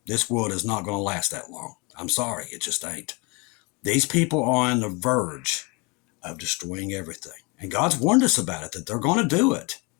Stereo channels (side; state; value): right; quieter; 28.9 dB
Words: this world is not going to last that long. I'm sorry, it just ain't. These people are on the verge of destroying everything. And God's warned us about it, that they're going to do it.